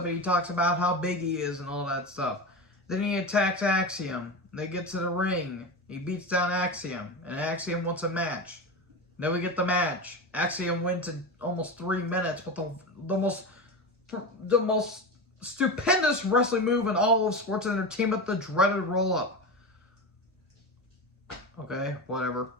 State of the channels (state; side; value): normal; both; correlation 0.22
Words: and he talks about how big he is and all that stuff. Then he attacks Axiom. They get to the ring. He beats down Axiom. And Axiom wants a match. Then we get the match. Axiom wins in almost 3 minutes with the most stupendous wrestling move in all of sports entertainment, the dreaded roll-up. Okay, whatever.